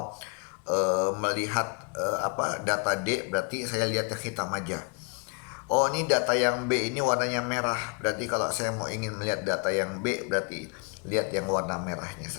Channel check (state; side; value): quieter; right; 36.1 dB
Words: melihat data D, berarti saya lihat yang hitam aja. Oh, ini data yang B ini warnanya merah. Berarti kalau saya mau ingin melihat data yang B, berarti lihat yang warna merahnya